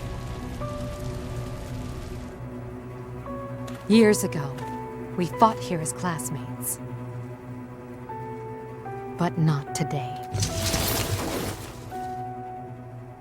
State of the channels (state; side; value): identical; both; correlation 1.00